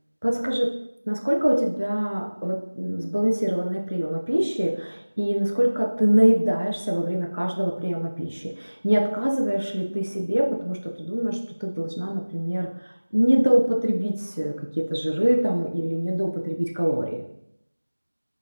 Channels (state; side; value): inverted; both; correlation -1.00